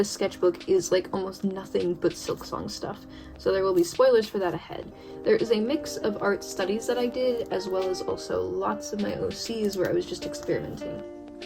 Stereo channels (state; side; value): identical; both; correlation 1.00